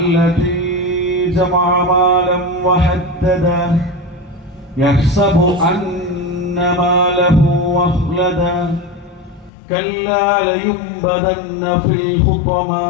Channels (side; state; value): right; drops out; at 9.5 s